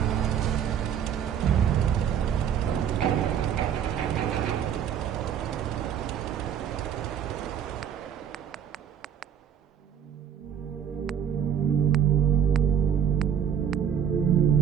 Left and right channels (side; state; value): left; quieter; 8.7 dB